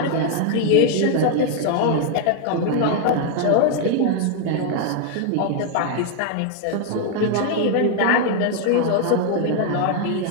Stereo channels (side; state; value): both; different; correlation 0.00